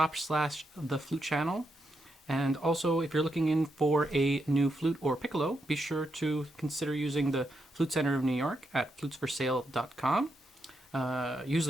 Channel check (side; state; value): both; normal; correlation 0.82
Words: slash the flute channel. And also, if you're looking in for a new flute or piccolo, be sure to consider using the Flute Center of New York at flutesforsale.com. Use